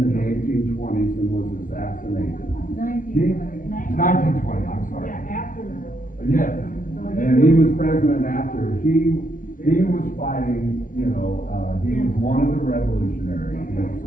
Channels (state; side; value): late; right; 0.39 ms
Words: in the 1820s and was assassinated. 1920, I'm sorry. Yeah, after the Yes, and he was president after. He was fighting, he was one of the revolutionaries against